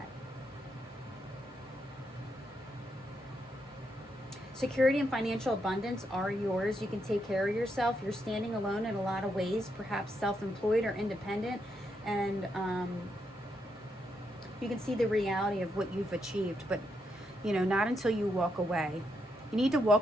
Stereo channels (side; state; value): both; normal; correlation 0.80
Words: Security and financial abundance are yours. You can take care of yourself. You're standing alone in a lot of ways, perhaps self-employed or independent. And you can see the reality of what you've achieved. But, you know, not until you walk away. You need to